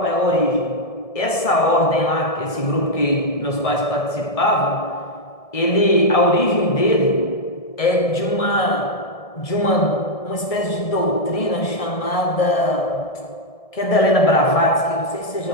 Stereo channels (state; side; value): late; right; 1.7 ms